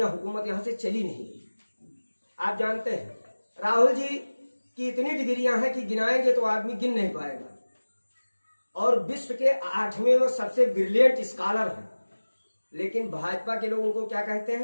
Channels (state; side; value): inverted; both; correlation -1.00